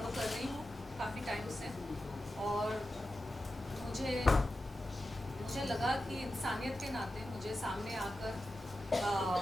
कर रही हूँ काफ़ी टाइम से, और मुझे लगा कि इंसानियत के नाते मुझे सामने आकर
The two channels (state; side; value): normal; both; correlation 0.92